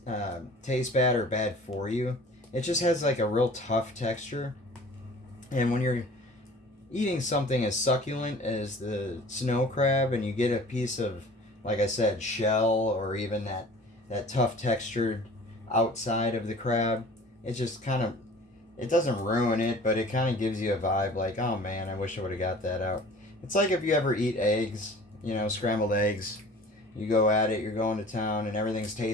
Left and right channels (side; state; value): both; normal; correlation 0.46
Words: tastes bad or bad for you. It just has like a real tough texture. And when you're eating something as succulent as the snow crab and you get a piece of, like I said, shell or even that tough textured outside of the crab, it just kind of, it doesn't ruin it, but it kind of gives you a vibe like, oh man, I wish I would have got that out. It's like if you ever eat eggs, scrambled eggs. You go at it, you're going to town, and everything's